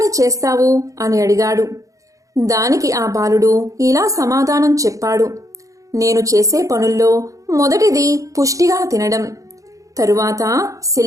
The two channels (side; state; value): left; late; 0.16 ms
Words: చేస్తావు అని అడిగాడు. దానికి ఆ బాలుడు ఇలా సమాధానం చెప్పాడు, నేను చేసే పనుల్లో మొదటిది పుష్టిగా తినడం, తరువాత